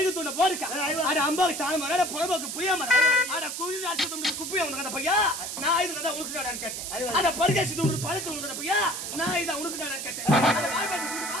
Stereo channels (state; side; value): noise; right; hiss, 6 dB below the sound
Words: துண்ண போருக்கா. அட அம்பாக்கு தாளமர அட புறம்போக்கு புளியாமர அட குழி நாட்டு துண்ண குப்பைய உனக்கு பையா. நான் இது தான் உனக்கு நான் கேட்டேன். அட பர்கேசி துண்ண பழக்கு உனக்கு பையா. நான் இத உனக்கு நான் கேட்டேன். அட வாய்பாடி குடி